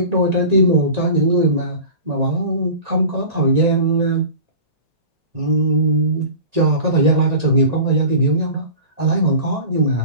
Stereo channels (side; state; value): left; late; 1.8 ms